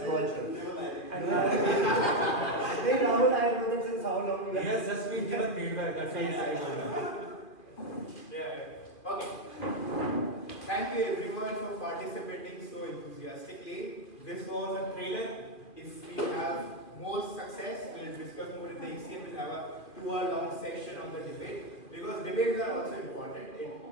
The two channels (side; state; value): right; late; 2.5 ms